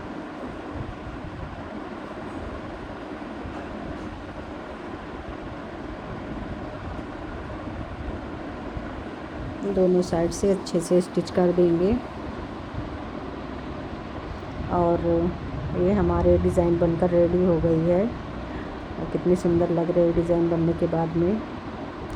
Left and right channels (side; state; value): both; identical; correlation 1.00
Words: दोनों साइड से अच्छे से स्टिच कर देंगे और ये हमारे डिज़ाइन बनकर रेडी हो गई है। और कितनी सुंदर लग रही है डिज़ाइन बनने के बाद में।